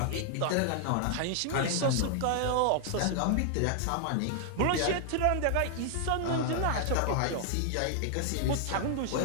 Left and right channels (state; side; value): different; both; correlation 0.00